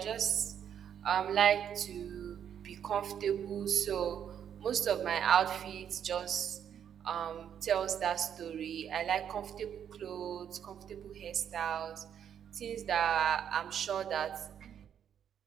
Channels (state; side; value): quieter; left; 8.8 dB